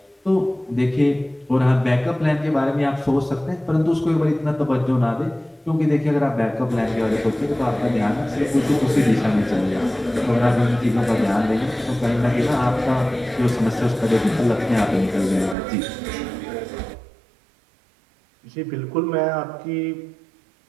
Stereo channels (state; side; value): drops out; left; at 15.6 s